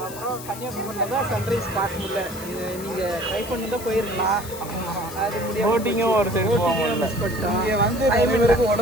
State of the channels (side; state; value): left; noise; hiss, 14 dB below the sound